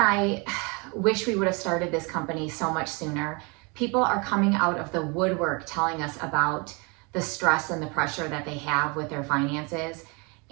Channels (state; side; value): quieter; left; 30.1 dB